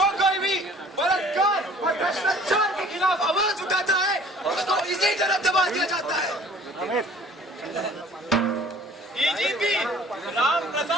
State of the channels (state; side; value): normal; both; correlation 0.51